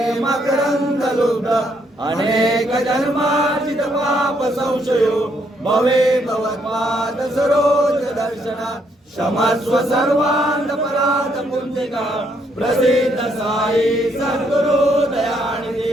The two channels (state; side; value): normal; both; correlation 0.72